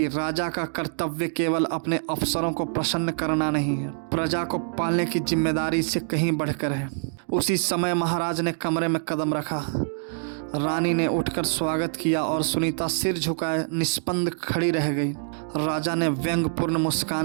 राजा का कर्तव्य केवल अपने अफसरों को प्रसन्न करना नहीं है, प्रजा को पालने की जिम्मेदारी से कहीं बढ़कर है। उसी समय महाराज ने कमरे में कदम रखा। रानी ने उठकर स्वागत किया और सुनीता सिर झुकाए निष्पंद खड़ी रह गई। राजा ने व्यंग्यपूर्ण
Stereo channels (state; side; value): silent; left; digital silence